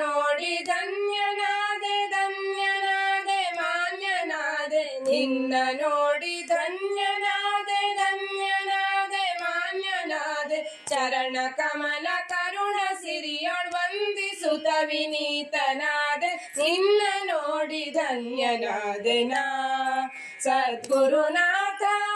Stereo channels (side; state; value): both; identical; correlation 1.00